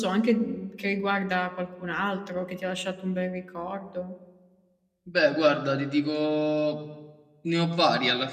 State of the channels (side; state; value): both; identical; correlation 1.00